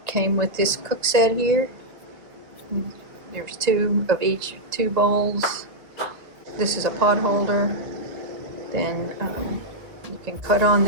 came with this cook set here. There's two of each, 2 bowls. This is a pot holder. Then you can cut on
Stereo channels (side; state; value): left; late; 1.9 ms